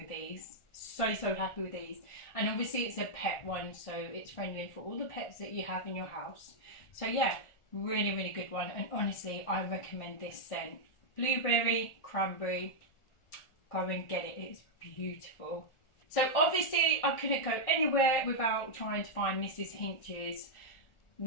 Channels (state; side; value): late; right; 1.4 ms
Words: these. So, so happy with these. And obviously it's a pet one, so it's friendly for all the pets that you have in your house. So yeah, really, really good one. And honestly, I recommend this scent. Blueberry, cranberry. Go and get it. It's beautiful. So obviously I couldn't go anywhere without trying to find Mrs. Hinch's